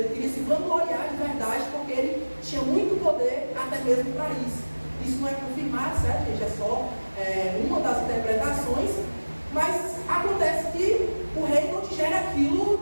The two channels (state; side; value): inverted; both; correlation -1.00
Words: queria se vangloriar de verdade, porque ele tinha muito poder até mesmo para isso. Isso não é confirmado, certo, gente? É só uma das interpretações. Mas acontece que o rei não digere